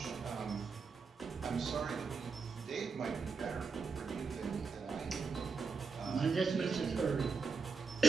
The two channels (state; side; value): quieter; left; 5.0 dB